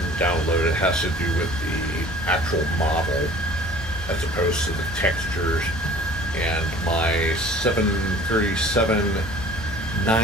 download it. It has to do with the actual model as opposed to the textures. And my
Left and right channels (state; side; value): normal; both; correlation 0.48